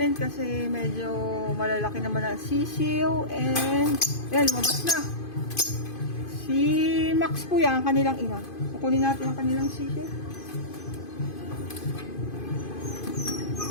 kasi medyo malalaki naman ang sisiw. And, yan, lumabas na. Si Max po yan, ang kanilang ina. Kukunin natin ang kanilang sisiw.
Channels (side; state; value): right; late; 2.5 ms